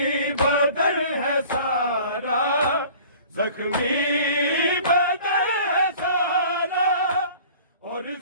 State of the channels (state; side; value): inverted; both; correlation -0.47